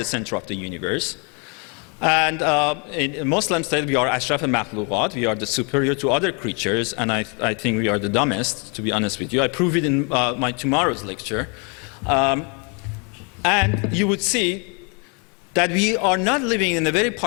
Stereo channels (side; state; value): right; quieter; 35.1 dB